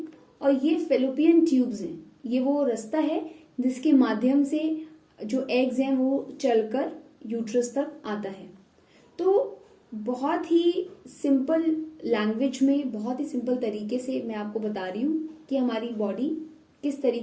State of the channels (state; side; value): identical; both; correlation 1.00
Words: और ये फेलोपियन ट्यूब्स हैं। ये वो रास्ता है जिसके माध्यम से जो एग्स हैं वो चलकर यूट्रस तक आता है। तो बहुत ही सिंपल लैंग्वेज में, बहुत ही सिंपल तरीके से मैं आपको बता रही हूँ कि हमारी बॉडी किस